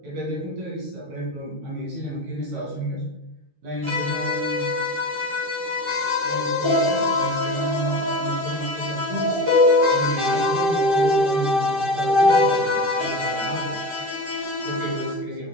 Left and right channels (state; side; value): late; left; 13 ms